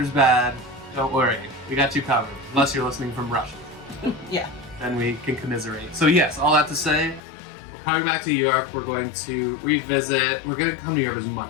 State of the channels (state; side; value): drops out; right; at 7.2 s